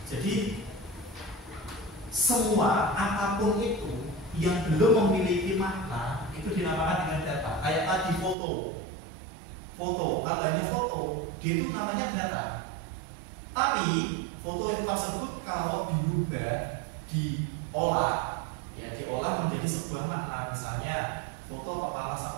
Jadi semua apapun itu yang belum memiliki makna itu dinamakan dengan data. Kayak tadi foto, kalau hanya foto, dia itu namanya data. Tapi foto itu tersebut kalau diubah, diolah, ya diolah menjadi sebuah makna. Misalnya foto kepala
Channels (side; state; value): left; drops out; at 8.3 s